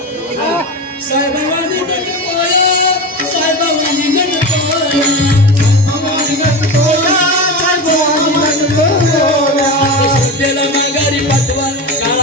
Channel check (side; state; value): both; normal; correlation 0.23